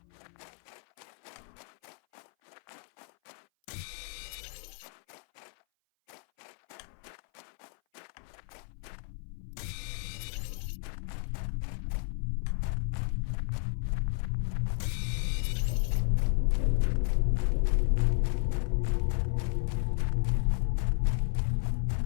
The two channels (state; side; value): silent; right; 56 dB below the other